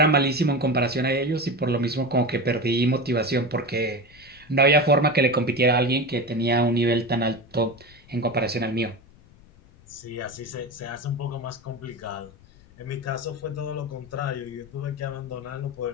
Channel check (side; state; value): left; noise; rumble, 25 dB below the sound